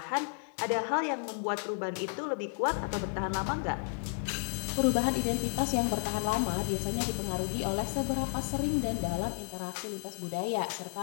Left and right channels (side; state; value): right; silent; 56 dB below the other